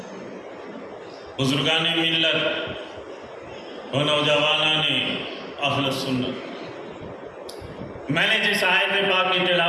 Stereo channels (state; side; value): identical; both; correlation 1.00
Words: بزرگان ملت و نوجوانان اہل سنت، میں نے جس آیت پاک کی